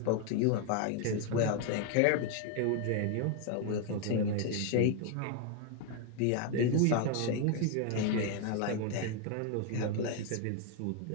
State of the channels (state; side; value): different; both; correlation 0.01